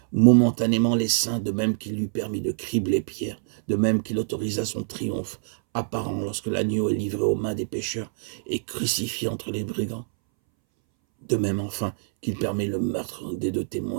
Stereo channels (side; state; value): left; silent; 61 dB below the other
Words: momentanément les saints, de même qu'il lui permit de cribler Pierre, de même qu'il autorisa son triomphe apparent lorsque l'agneau est livré aux mains des pécheurs et crucifié entre les brigands. De même enfin qu'il permet le meurtre des 2